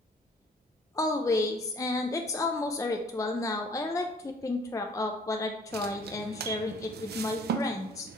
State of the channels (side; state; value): both; normal; correlation 0.56